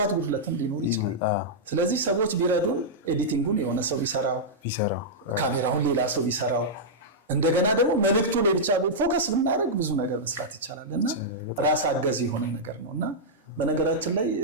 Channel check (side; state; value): both; normal; correlation -0.09